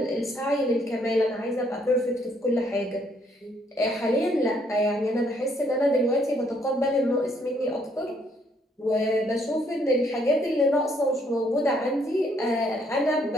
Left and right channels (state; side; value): normal; both; correlation 0.69